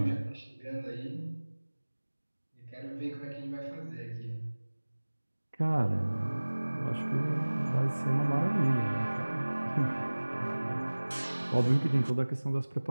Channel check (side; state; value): both; inverted; correlation -1.00